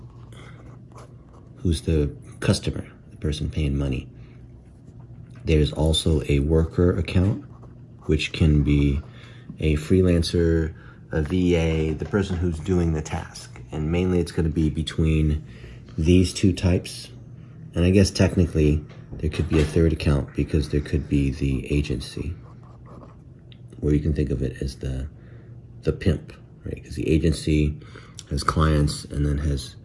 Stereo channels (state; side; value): identical; both; correlation 1.00